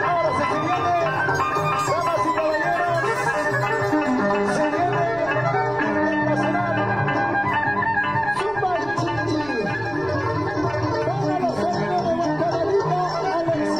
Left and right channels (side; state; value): right; noise; rumble, 19 dB below the sound